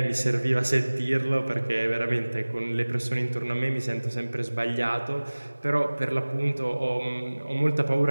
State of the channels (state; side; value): inverted; both; correlation -1.00